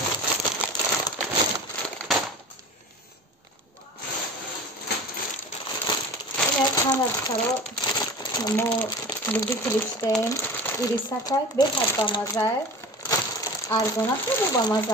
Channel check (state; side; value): normal; both; correlation 0.36